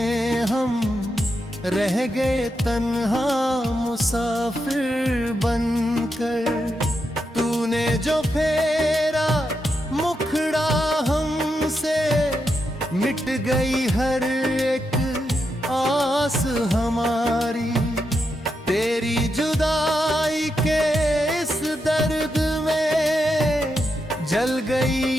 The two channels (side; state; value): both; normal; correlation 0.84